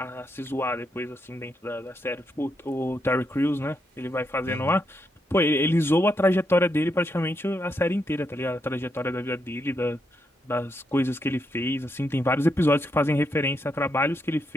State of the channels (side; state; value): both; normal; correlation 0.80